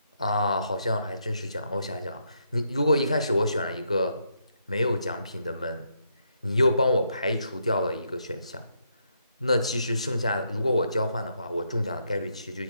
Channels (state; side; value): inverted; both; correlation -0.77